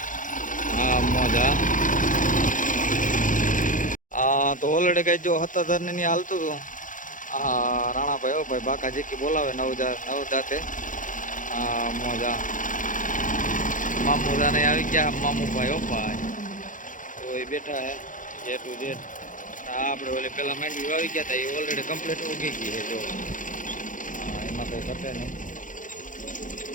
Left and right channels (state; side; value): late; right; 0.38 ms